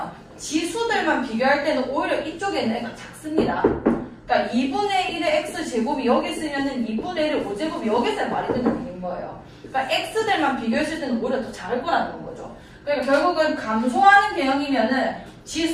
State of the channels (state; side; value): identical; both; correlation 1.00